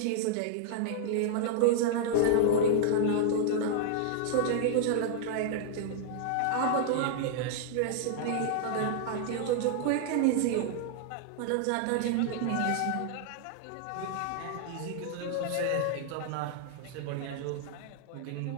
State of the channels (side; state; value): both; different; correlation -0.01